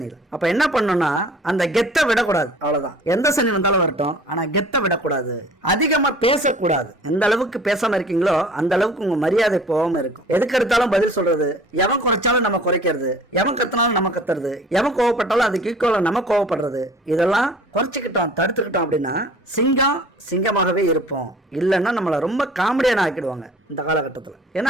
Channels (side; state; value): both; normal; correlation 0.48